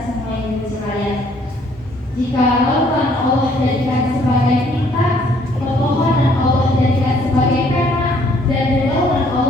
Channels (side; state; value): both; normal; correlation 0.63